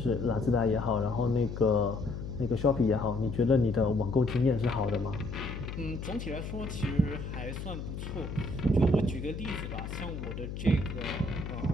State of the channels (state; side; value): noise; left; hum, 7 dB below the sound